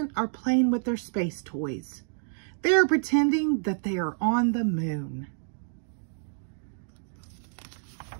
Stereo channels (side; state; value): left; silent; digital silence